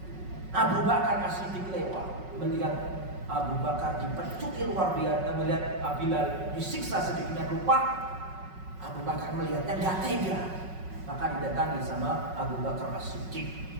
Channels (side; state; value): left; late; 5.4 ms